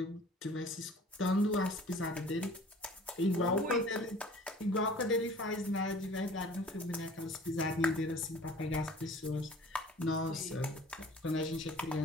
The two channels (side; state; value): both; normal; correlation 0.48